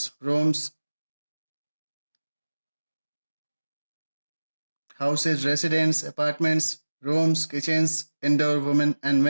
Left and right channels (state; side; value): inverted; both; correlation -1.00